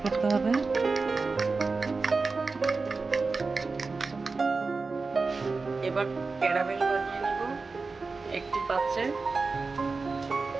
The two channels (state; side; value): quieter; left; 4.1 dB